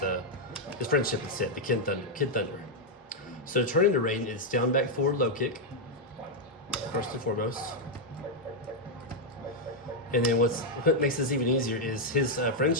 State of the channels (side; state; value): both; normal; correlation -0.01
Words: friendship instead, the Kid Thunder. So to turn into Raiden, it's down, back, forward, low kick, first and foremost. And then what makes this even easier is his